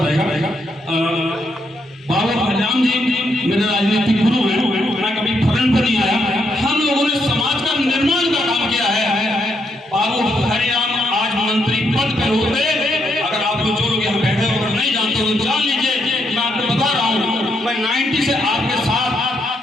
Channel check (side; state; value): both; normal; correlation 0.77